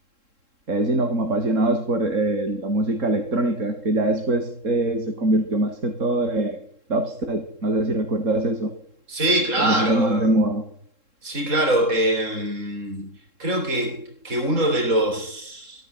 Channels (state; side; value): late; left; 3.7 ms